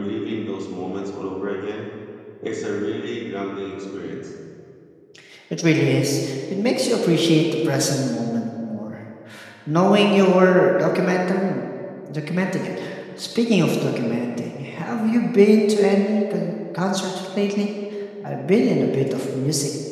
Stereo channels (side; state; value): both; identical; correlation 1.00